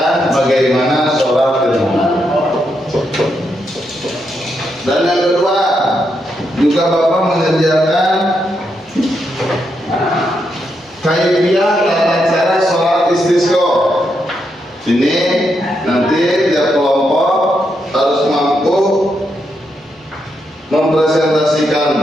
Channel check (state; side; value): normal; both; correlation 0.81